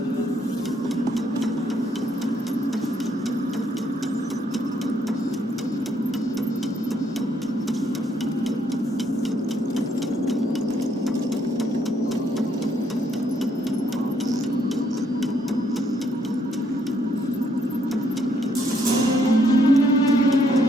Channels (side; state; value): both; normal; correlation 0.70